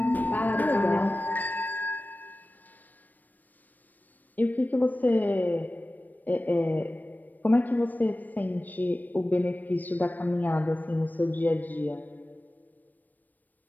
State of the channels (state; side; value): late; right; 0.086 ms